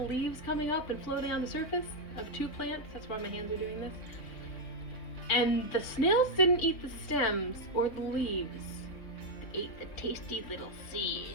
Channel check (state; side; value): late; right; 3.6 ms